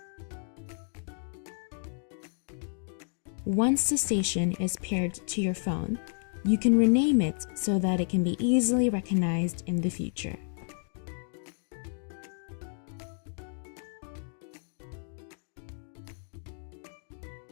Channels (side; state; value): right; silent; 57 dB below the other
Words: Once the station is paired to your phone, you can rename it so that it can be easily recognized in the future.